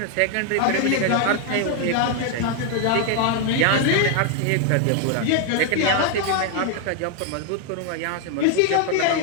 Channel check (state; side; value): different; both; correlation 0.00